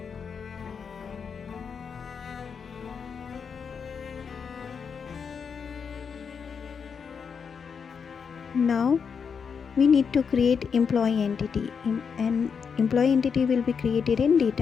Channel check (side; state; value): right; quieter; 6.3 dB